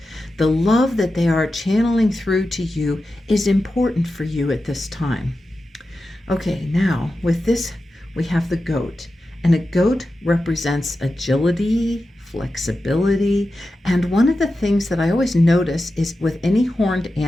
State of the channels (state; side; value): normal; both; correlation 0.92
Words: the love that they are channeling through to you is important for you at this time. Okay, now with this, we have the goat. And a goat represents agility, flexibility, and one of the things that I always notice is with any horned